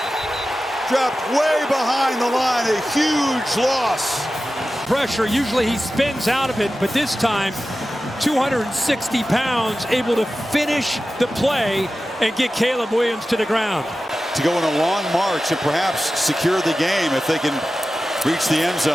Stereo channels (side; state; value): both; normal; correlation 0.94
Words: Dropped way behind the line, a huge loss. Pressure, usually he spins out of it, but this time 260 pounds, able to finish the play and get Caleb Williams to the ground. To go on a long march and perhaps secure the game if they can reach the end